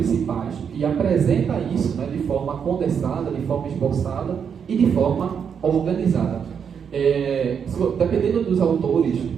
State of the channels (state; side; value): quieter; left; 7.2 dB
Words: e apresenta isso, né, de forma condensada, de forma esboçada e de forma organizada. Dependendo dos autores